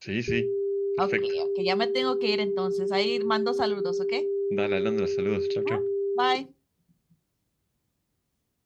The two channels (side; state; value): both; identical; correlation 1.00